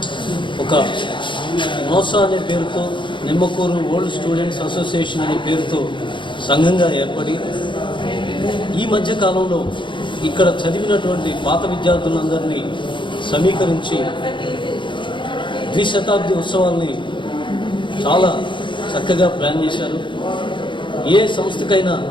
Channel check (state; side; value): late; right; 0.23 ms